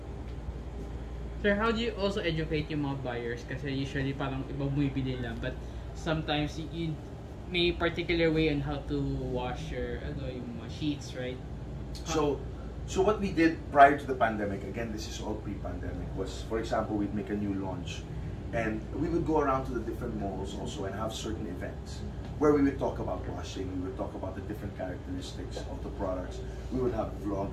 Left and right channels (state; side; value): identical; both; correlation 1.00